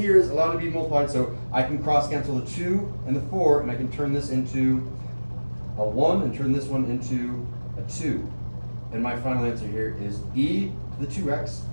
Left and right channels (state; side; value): inverted; both; correlation -1.00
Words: is allowed to be multiplied, so I can cross cancel the 2 and the 4, and I can turn this into a 1 and turn this one into a 2. And my final answer here is e to the 2x